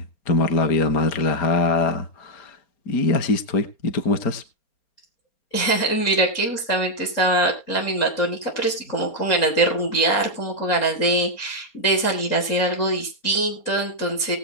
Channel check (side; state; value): right; late; 4.3 ms